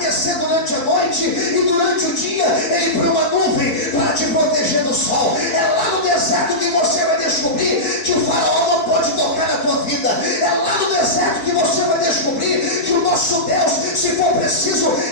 durante a noite, e durante o dia Ele põe uma nuvem para te proteger do sol. É lá no deserto que você vai descobrir que o faraó não pode tocar na tua vida. É lá no deserto que você vai descobrir que o nosso Deus, se for preciso,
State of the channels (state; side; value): late; right; 4.6 ms